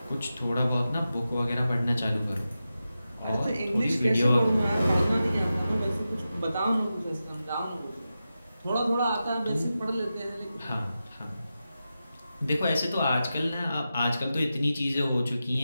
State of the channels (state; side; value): inverted; both; correlation -0.91